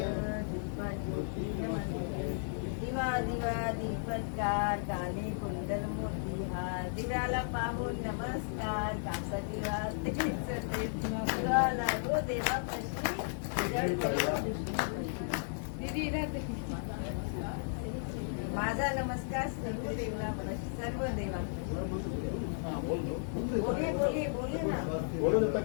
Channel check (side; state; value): right; silent; digital silence